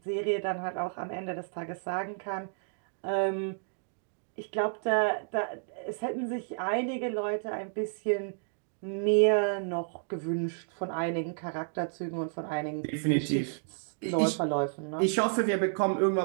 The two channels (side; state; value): left; silent; digital silence